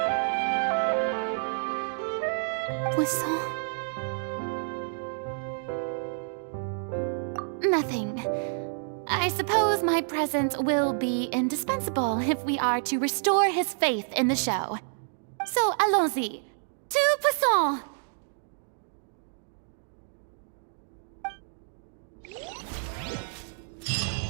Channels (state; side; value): silent; left; digital silence